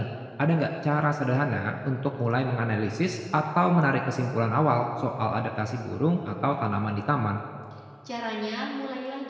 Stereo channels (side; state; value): both; identical; correlation 1.00